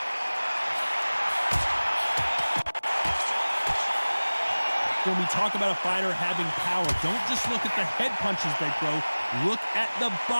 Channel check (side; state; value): both; inverted; correlation -1.00